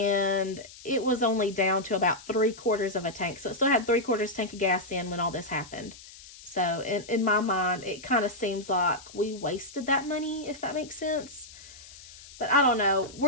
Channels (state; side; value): noise; left; hiss, 18 dB below the sound